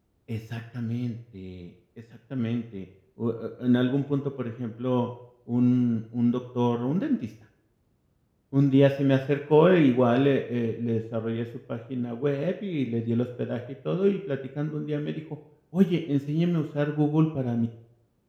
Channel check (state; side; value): identical; both; correlation 1.00